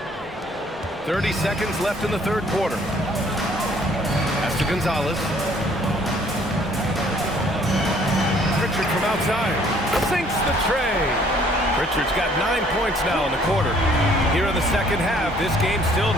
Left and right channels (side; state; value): both; normal; correlation 0.60